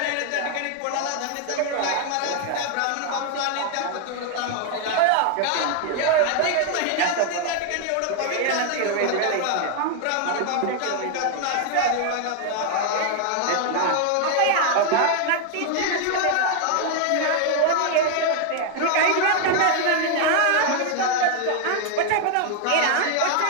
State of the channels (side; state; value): both; different; correlation 0.00